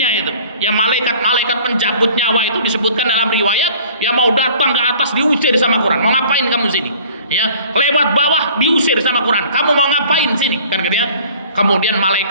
itu. Ya malaikat-malaikat pencabut nyawa itu disebutkan dalam riwayat, ya mau datang ke atas diusir sama Quran. Mau ngapain kamu sini? Ya, lewat bawah diusir sama Quran. Kamu mau ngapain sini? Kan gitu ya. Kemudian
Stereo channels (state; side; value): inverted; both; correlation -0.50